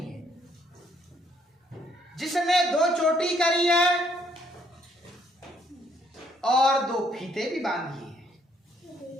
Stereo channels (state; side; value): normal; both; correlation 0.68